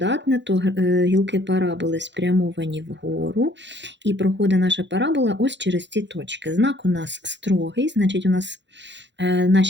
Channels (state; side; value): late; left; 0.52 ms